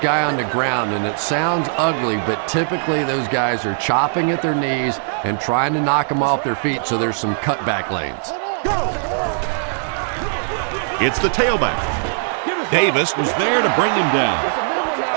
on the ground, and it sounds ugly, but typically those guys are chopping at their knees and trying to knock them off their feet, so there's some cutback lanes. It's the tailback. Davis was there to bring him down.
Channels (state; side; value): silent; left; digital silence